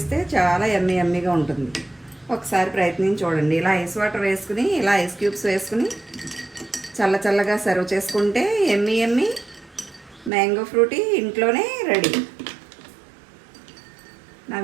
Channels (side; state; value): left; drops out; at 10.3 s